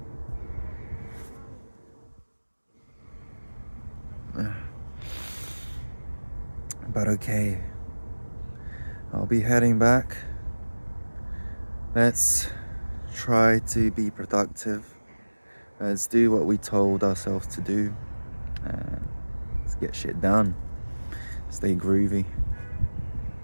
But okay, I'll be heading back. Let's try to be productive. Let's do what we told ourselves to do. Let's get shit done. Stay groovy.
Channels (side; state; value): both; inverted; correlation -1.00